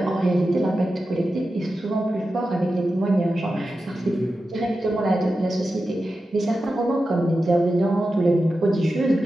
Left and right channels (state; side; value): normal; both; correlation 0.91